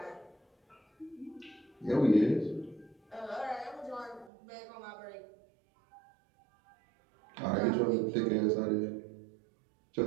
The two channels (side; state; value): left; drops out; at 4.3 s